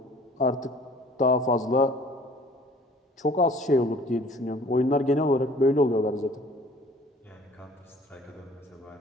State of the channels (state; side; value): normal; both; correlation 0.52